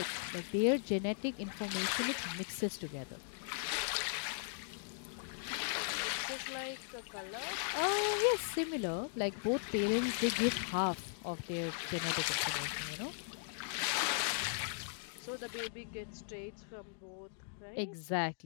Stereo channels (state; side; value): silent; right; digital silence